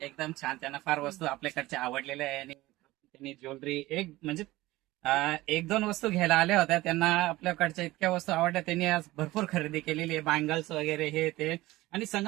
छान. त्यांना फार वस्तू आपल्याकडच्या आवडलेल्या आहे आणि त्यांनी ज्वेलरी म्हणजे एक दोन वस्तू घ्यायला आल्या होत्या. त्यांना आपल्याकडच्या इतक्या वस्तू आवडल्या. त्यांनी आज भरपूर खरेदी केलेली आहे. बँगल्स वगैरे हे ते. आणि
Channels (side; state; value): left; quieter; 18.4 dB